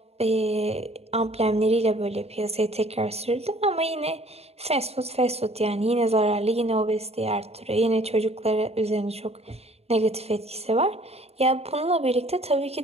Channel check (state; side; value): late; left; 0.30 ms